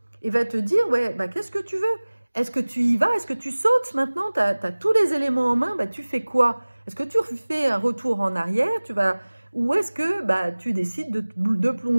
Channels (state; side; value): inverted; both; correlation -1.00